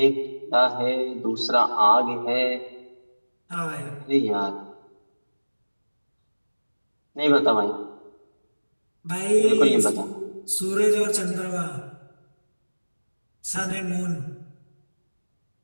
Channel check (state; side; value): inverted; both; correlation -1.00